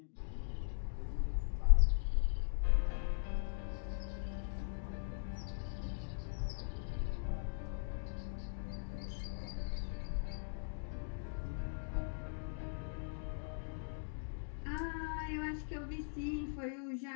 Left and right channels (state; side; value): silent; right; digital silence